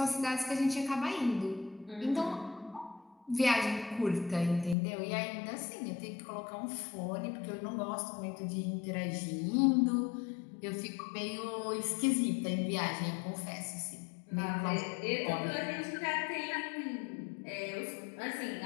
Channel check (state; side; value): drops out; right; at 4.8 s